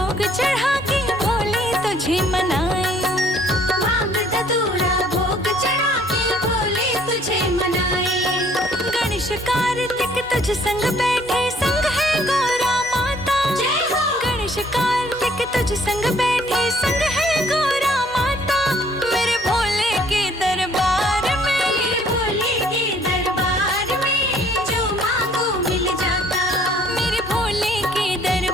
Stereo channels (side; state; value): both; normal; correlation 0.60